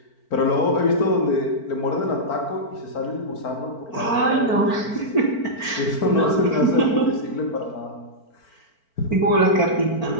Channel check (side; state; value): right; late; 4.5 ms